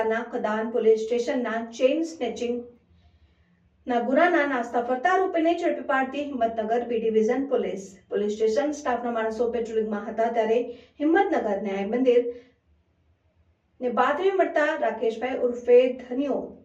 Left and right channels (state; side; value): identical; both; correlation 1.00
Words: કદાન પોલીસ સ્ટેશનના ચેઇન સ્નેચિંગ ના ગુનાના નાસ્તા ફરતા આરોપીને ઝડપી પાડતી Himmatnagar B division police station સ્ટાફના માણસો પેટ્રોલિંગમાં હતા ત્યારે હિંમતનગર ન્યાય મંદિર ને બાતમી મળતા રાકેશભાઈ ઉર્ફે ધનિયો